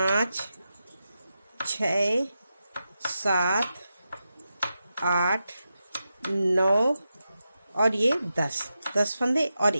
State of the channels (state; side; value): inverted; both; correlation -0.89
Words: 6 7 8 9 और ये 10 फंदे और